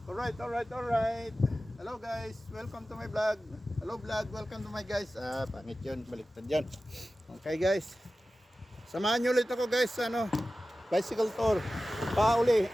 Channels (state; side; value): normal; both; correlation 0.95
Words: Alright. Hello guys, welcome to my vlog. Hello vlog, welcome to my guys. Pangit yun, baliktad yun. Okay guys, samahan nyo ulit ako guys, bicycle tour.